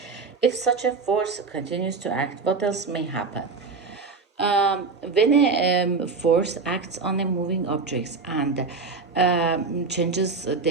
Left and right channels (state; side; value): quieter; left; 4.4 dB